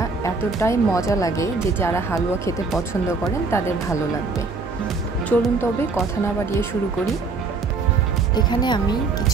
এতটাই মজা লাগে যে যারা হালুয়া খেতে পছন্দ করেন তাদের ভালো লাগবে। চলুন তবে কথা না বাড়িয়ে শুরু করি। এখানে আমি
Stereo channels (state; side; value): quieter; left; 4.2 dB